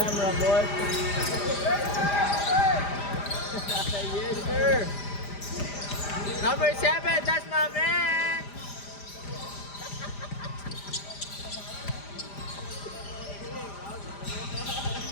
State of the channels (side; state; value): right; late; 5.0 ms